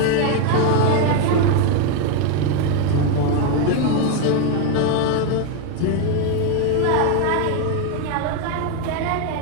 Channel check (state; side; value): different; both; correlation 0.01